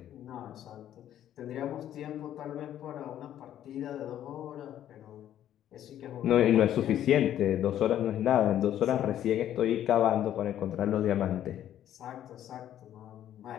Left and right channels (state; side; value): quieter; right; 11.3 dB